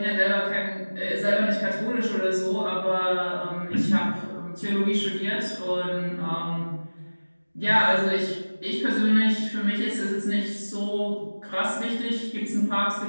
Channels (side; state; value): both; inverted; correlation -1.00